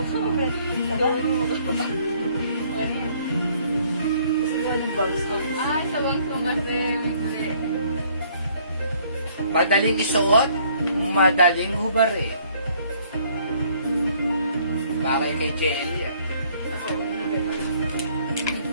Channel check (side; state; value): both; inverted; correlation -0.62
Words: Diba? Kasi gawa ng bangs ko. Ah, sa bangsong kasi. Madaling isuot, madaling hubari. Bagay kay JL yan.